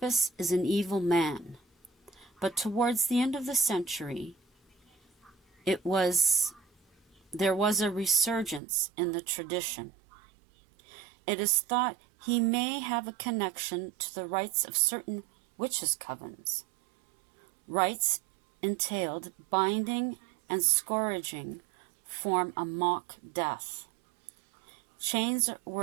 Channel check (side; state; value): left; drops out; at 8.6 s